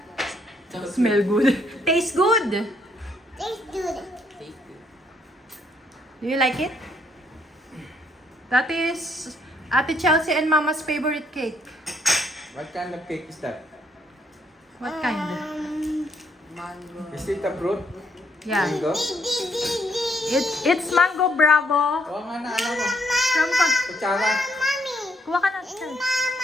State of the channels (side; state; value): both; normal; correlation 0.70